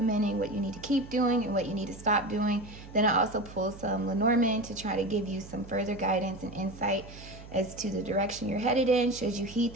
what you need to keep doing and what you need to stop doing. Then I also pull some Lenormand to try to give you some further guidance and insight as to the direction you're headed in, should you heed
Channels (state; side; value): noise; right; hum, 16 dB below the sound